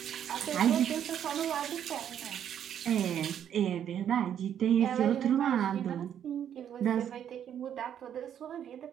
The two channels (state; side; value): quieter; left; 9.5 dB